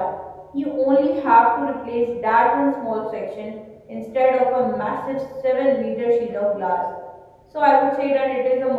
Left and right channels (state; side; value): identical; both; correlation 1.00